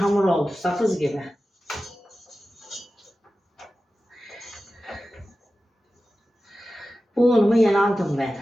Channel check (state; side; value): normal; both; correlation 0.94